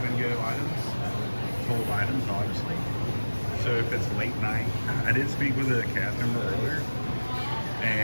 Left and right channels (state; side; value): inverted; both; correlation -1.00